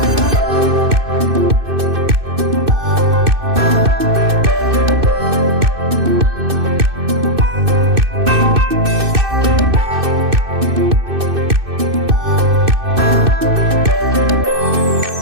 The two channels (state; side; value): late; left; 2.6 ms